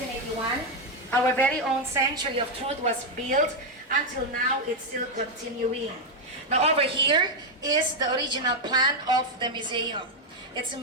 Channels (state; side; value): normal; both; correlation 0.02